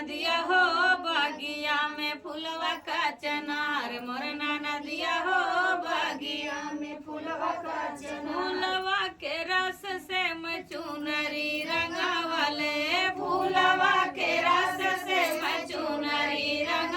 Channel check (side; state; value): both; identical; correlation 1.00